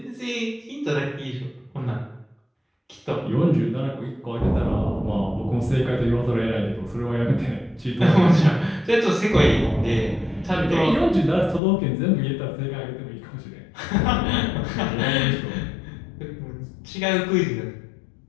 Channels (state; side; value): drops out; right; at 11.6 s